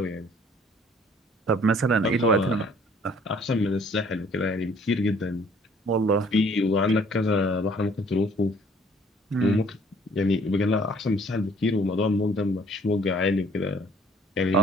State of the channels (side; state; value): both; normal; correlation 0.58